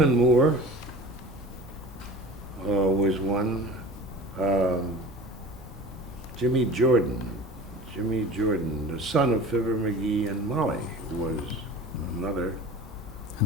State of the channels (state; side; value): normal; both; correlation 0.38